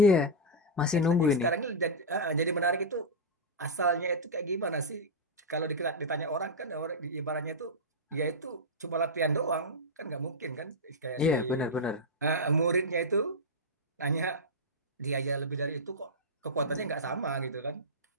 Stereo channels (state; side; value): normal; both; correlation -0.06